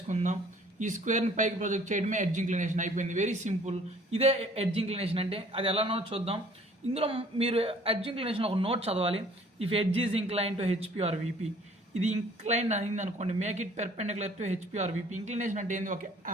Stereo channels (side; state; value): both; normal; correlation 0.55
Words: ఈ స్క్వేర్ని పైకి ప్రొజెక్ట్ చేయడమే ఎడ్జ్ ఇంక్లినేషన్ అయిపోయింది. Very simple. ఇదే ఎడ్జ్ ఇంక్లినేషన్ అంటే. అది ఎలానో చూద్దాం. ఇందులో మీరు ఎడ్జ్ ఇంక్లినేషన్ ఒక నోట్ చదవాలి. If edge is incline to HP or VP, ఇది ఇంక్లైన్ అయింది అనుకోండి, make it perpendicular to HP or VP. Inclination అంటే ఏంది?